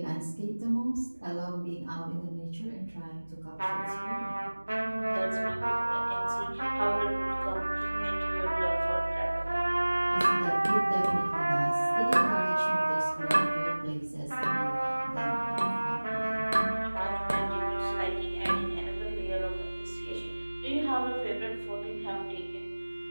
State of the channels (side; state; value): both; inverted; correlation -1.00